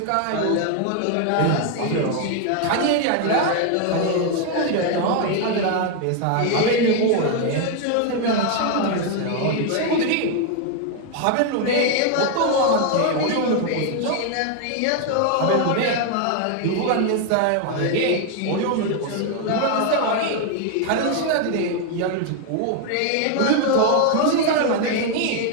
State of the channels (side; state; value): both; different; correlation 0.01